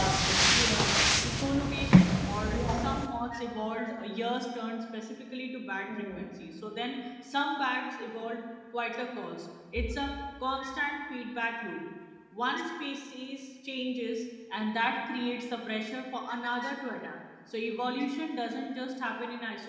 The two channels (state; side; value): identical; both; correlation 1.00